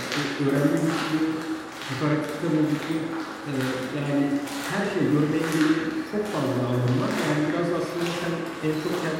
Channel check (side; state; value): both; identical; correlation 1.00